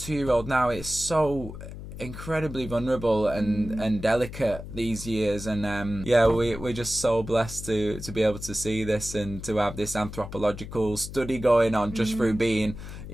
now. It's so incredibly vulnerable and delicate these years, and we're just so blessed to be able to see this and to have this anthropological study going on just through being,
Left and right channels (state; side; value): noise; left; hum, 11 dB below the sound